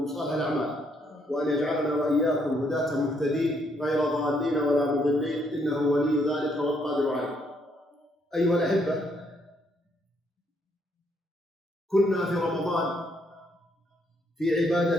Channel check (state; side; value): normal; both; correlation 0.72